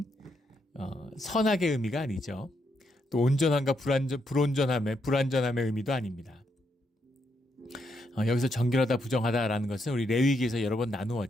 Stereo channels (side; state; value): both; normal; correlation 0.79